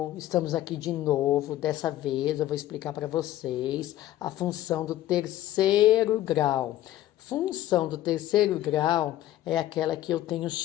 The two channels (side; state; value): right; quieter; 13.8 dB